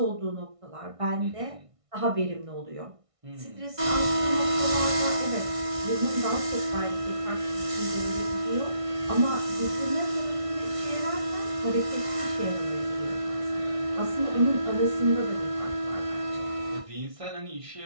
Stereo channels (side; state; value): left; late; 1.6 ms